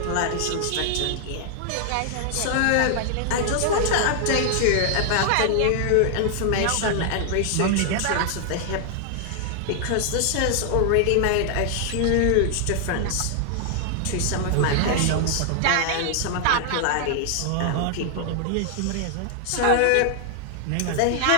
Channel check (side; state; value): both; different; correlation 0.00